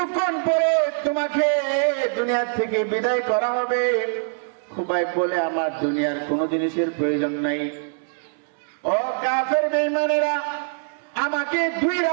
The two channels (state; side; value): silent; left; 63 dB below the other